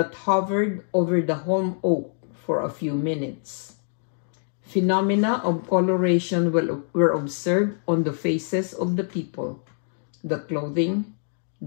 hovered over the holm oak for a few minutes. Phenomena of coloration were observed on the faces of the people, the clothing,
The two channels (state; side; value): silent; right; digital silence